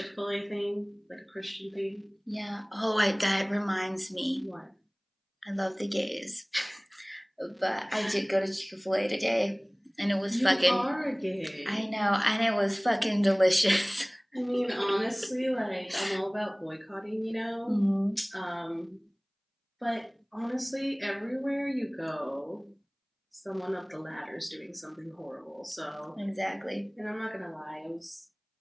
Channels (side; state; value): both; identical; correlation 1.00